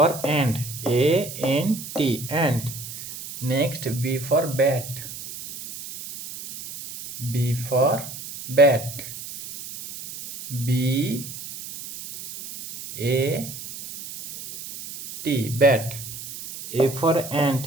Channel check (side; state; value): right; noise; hiss, 11 dB below the sound